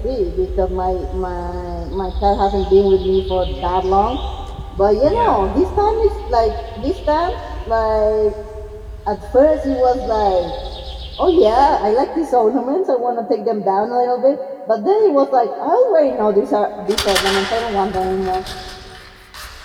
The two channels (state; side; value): identical; both; correlation 1.00